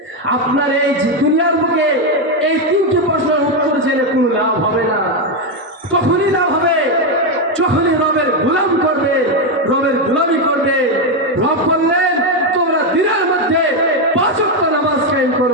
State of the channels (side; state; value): both; normal; correlation 0.07